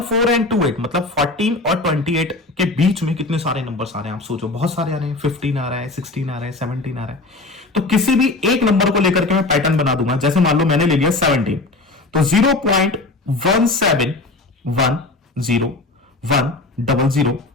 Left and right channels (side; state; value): right; quieter; 3.2 dB